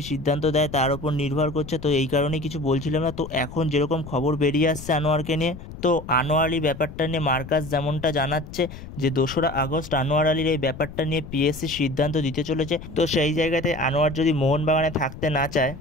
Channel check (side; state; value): left; noise; rumble, 13 dB below the sound